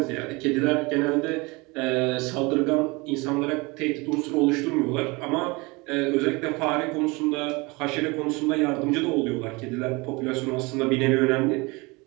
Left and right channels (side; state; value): left; quieter; 25.5 dB